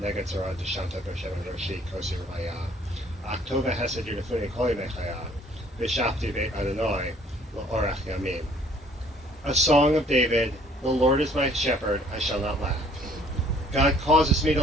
Neged Zorah Deshanta B'Shem Roshi Kosi Raya, Aktova Hesed Yunifuni Koli Mechaya, B'Shafti Beit Adonai, L'Orach Yamim. A song of David, the Lord is my shepherd, I shall not lack. God causes me to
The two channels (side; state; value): both; normal; correlation 0.58